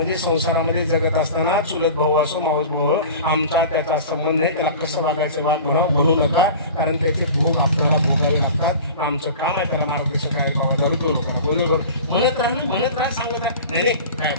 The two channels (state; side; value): inverted; both; correlation -0.37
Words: संसारामध्ये जगत असताना चुलत भाऊ असो मावस भाऊ, आमचा त्याचा संबंध नाही, त्याला कसं वागायचं वाद म्हणू नका, कारण त्याचे भोग आपल्याला भोगावे लागतात. आमचं काम आहे त्याला मार्गदर्शन करायला, बाबा दारू तो लोकांना बरोबर म्हणत राहा सांगत आहे. नाही काय